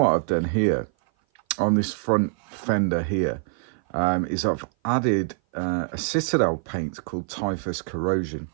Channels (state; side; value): silent; left; 56 dB below the other